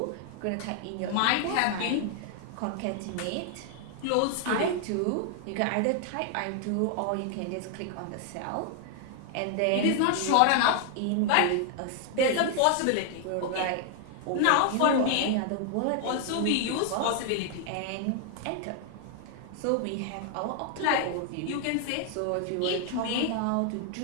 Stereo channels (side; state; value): both; different; correlation 0.00